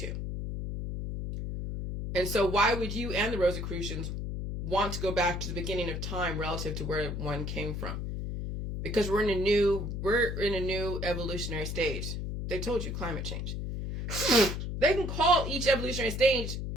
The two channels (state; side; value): noise; left; hum, 4 dB below the sound